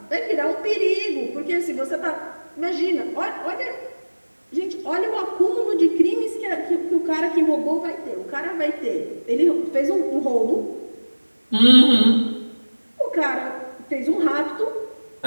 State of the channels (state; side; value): inverted; both; correlation -1.00